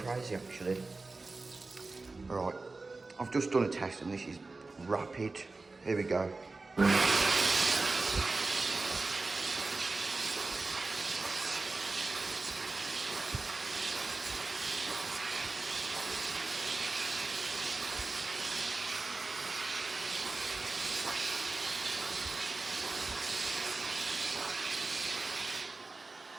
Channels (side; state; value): left; quieter; 3.6 dB